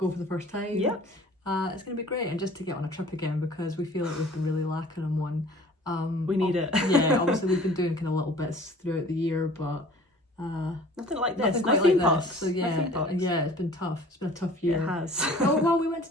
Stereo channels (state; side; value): normal; both; correlation 0.49